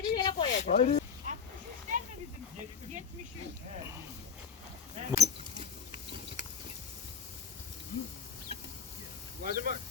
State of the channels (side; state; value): right; quieter; 6.0 dB